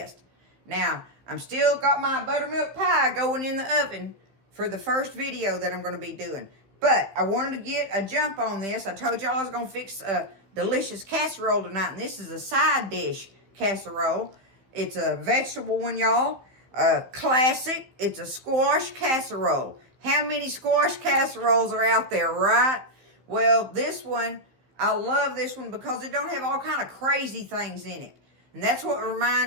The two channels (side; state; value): left; late; 15 ms